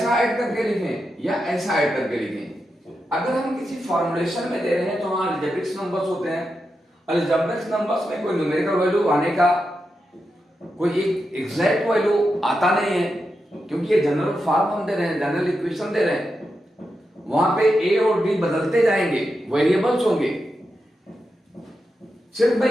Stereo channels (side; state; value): both; normal; correlation 0.87